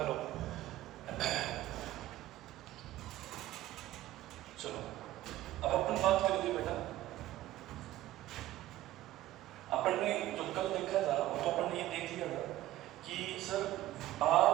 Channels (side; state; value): left; quieter; 15.0 dB